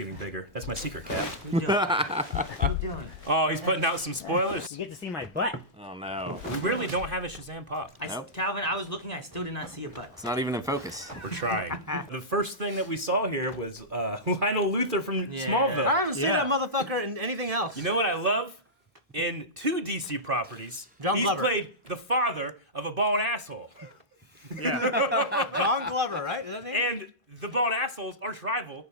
bigger. That's my secret, Cat. What are you doing? Oh, he's putting out some spoilers. You get to see my butt. Oh no. We really don't have a Shazam pop. Nope. Calvin, I was looking, I still did not see a butt. It's not even in focus. We're trying. The first thing that we saw here was Lionel Luthor from Yeah. Smallville. I haven't seen that motherfucker in anything else. You know what I love? In 2 DC properties, John he's Glover. played the father of a bald asshole. John Glover, right? Is that his name? And the bald asshole's arch rival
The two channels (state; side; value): normal; both; correlation -0.15